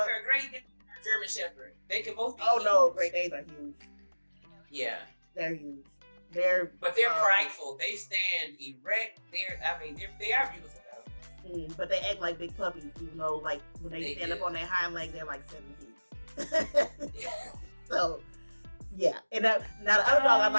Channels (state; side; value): inverted; both; correlation -1.00